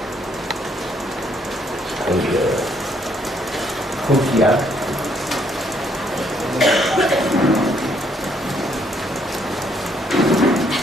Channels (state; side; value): normal; both; correlation 0.69